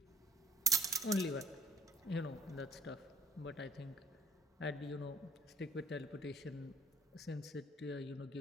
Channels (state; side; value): normal; both; correlation 0.52